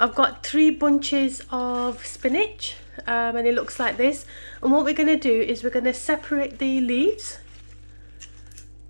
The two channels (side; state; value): both; inverted; correlation -1.00